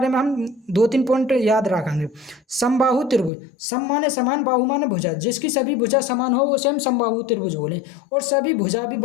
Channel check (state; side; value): drops out; right; at 3.3 s